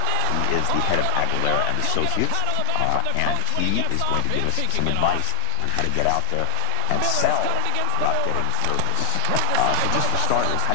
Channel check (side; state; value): both; different; correlation 0.00